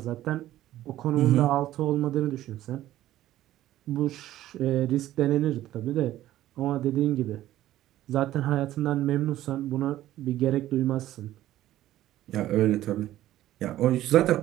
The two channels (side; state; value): left; quieter; 14.0 dB